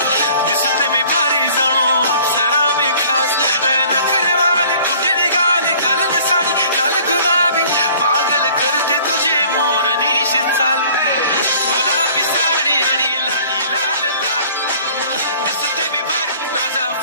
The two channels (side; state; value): both; inverted; correlation -0.52